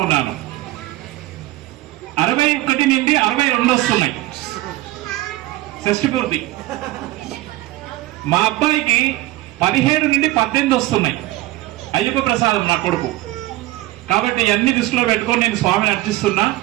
ఉన్నాను. 61 నుండి 62 వస్తున్నాయి షష్ఠి పూర్తి. మా అబ్బాయికి 17 నుండి 18 వస్తున్నాయి. అయ్యప్ప ప్రసాదం నా కొడుకు. కాబట్టి అన్ని దృష్టిలో పెట్టుకొని నేను స్వామిని అర్చిస్తున్నా,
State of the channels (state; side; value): quieter; left; 17.3 dB